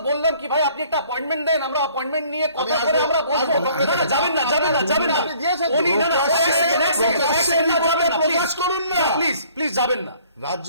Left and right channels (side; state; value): both; inverted; correlation -0.57